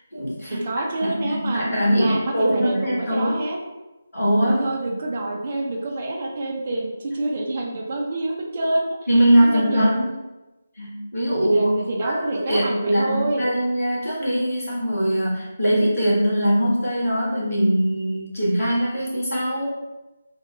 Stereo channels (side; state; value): both; inverted; correlation -0.93